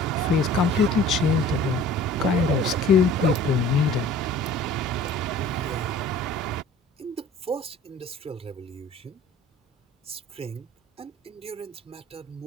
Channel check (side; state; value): both; normal; correlation 0.47